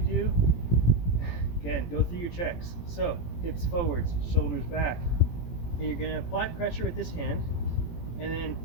do, again, go through your checks. So hips forwards, shoulders back. And you're going to apply pressure with this hand, and then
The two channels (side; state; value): right; late; 18 ms